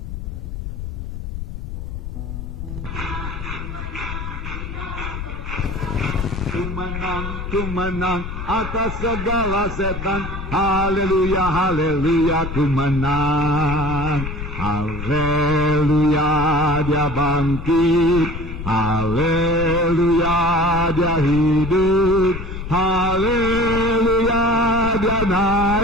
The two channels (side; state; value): left; noise; rumble, 7 dB below the sound